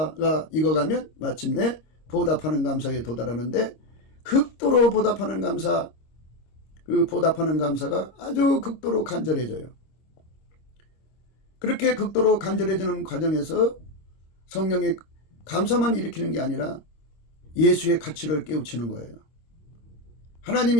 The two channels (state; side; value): late; right; 25 ms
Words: 익어가면 마침내 보답하는 감사에 도달하는데, 극도로 보답하는 감사, 그 보답하는 감사가 아주 극도로 간절해져요. 그렇게 극도로 간절해지는 과정에서 성령의 감사만 일으키는 게 아니라 예수의 가치를 깨우치는 거예요. 하나님